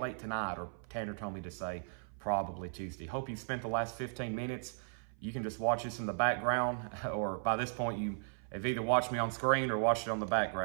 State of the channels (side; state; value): left; silent; 54 dB below the other